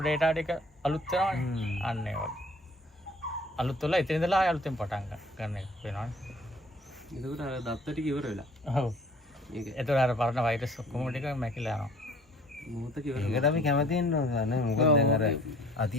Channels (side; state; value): both; normal; correlation 0.54